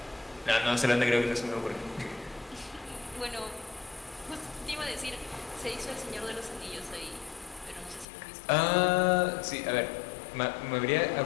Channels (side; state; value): right; drops out; at 8.1 s